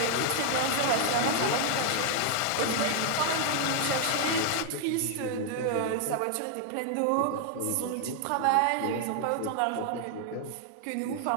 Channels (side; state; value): both; different; correlation 0.00